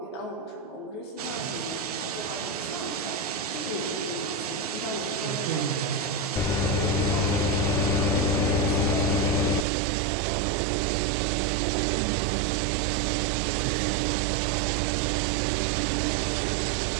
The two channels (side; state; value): left; drops out; at 9.7 s